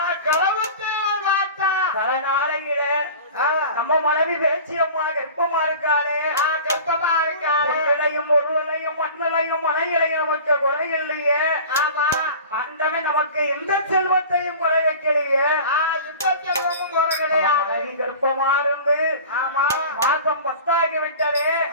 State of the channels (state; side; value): inverted; both; correlation -0.39